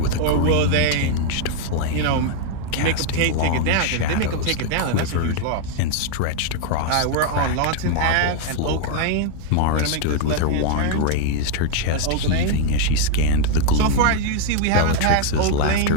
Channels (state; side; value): different; both; correlation 0.00